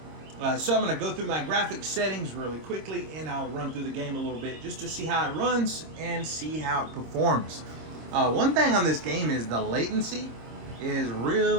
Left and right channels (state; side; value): late; left; 26 ms